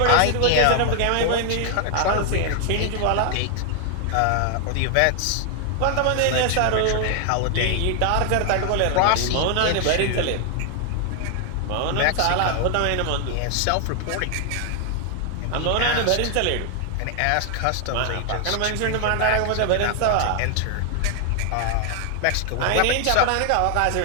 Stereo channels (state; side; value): different; both; correlation 0.00